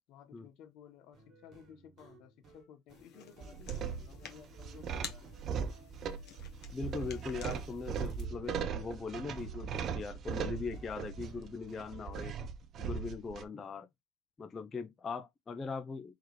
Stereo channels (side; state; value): both; normal; correlation 0.56